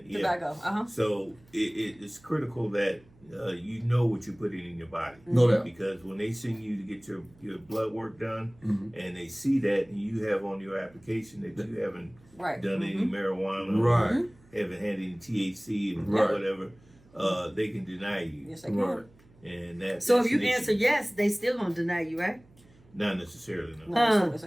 tobacco. So it's critical that you know what you're putting in your body. No doubt. Because when they send you to get your blood work done, and they see that and you have on your application that you haven't done any marijuana, Right. haven't had any THC and Right. whatever, they can deny you. Yes, they can. Right. And that. So that's if you an issue. answer yes, they still gonna deny you, right? Not necessarily, no. No,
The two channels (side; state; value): right; noise; hum, 28 dB below the sound